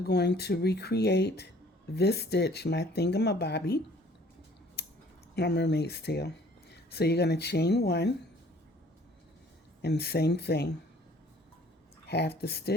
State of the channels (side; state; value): both; normal; correlation 0.55